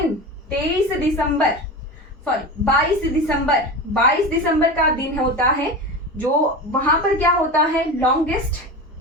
22 दिसंबर का दिन होता है, जो वहां पर क्या होता है? लॉन्गेस्ट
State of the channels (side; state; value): both; normal; correlation 0.27